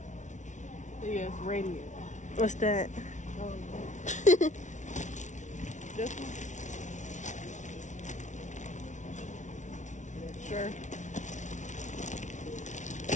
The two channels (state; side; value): late; right; 0.36 ms